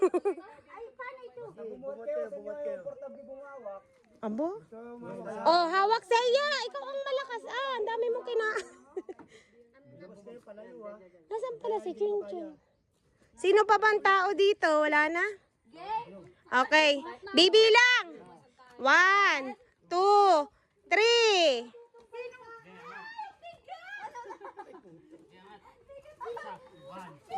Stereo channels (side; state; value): both; identical; correlation 1.00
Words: Ay, paano ito? Bumuhat kayo sa inyo yung portable bumawak. Abo? Oh, hawak sa iya. Ikaw ang malakas. Ang dami mo kina... Nasaan pala si Chinchon? Sino pa bang tao dito? Wala na? Okay. Bibilang. 1, 2, 3.